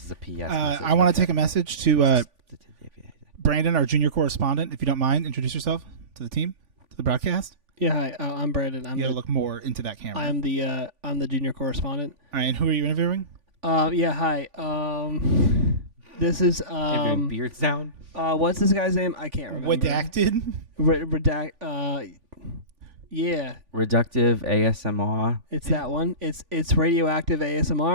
is a PS. I want to take a message to Brandon, our junior correspondent. If you don't mind, introduce yourself to the team, to the broadcast. Yeah, hi. I'm Brandon. You gotta look more into that camera. I'm the junior correspondent. All right, and who are you interviewing? Yeah, hi. This is Interviewing beard sound. what's this guy's name? I can't remember. Redacted. Redact. Yeah, Reductive ASMR. it's that one. It's radioactive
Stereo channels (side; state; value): left; late; 3.5 ms